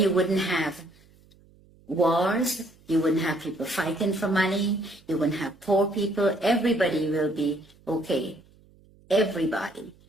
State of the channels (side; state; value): right; noise; hum, 29 dB below the sound